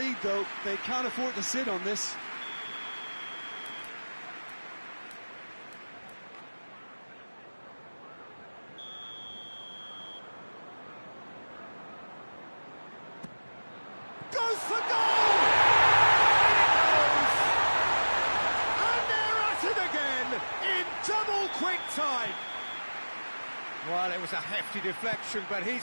though. They can't afford to sit on this. Goes for goal! And they're at it again in double quick time. Well, it was a hefty deflection, but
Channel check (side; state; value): both; inverted; correlation -1.00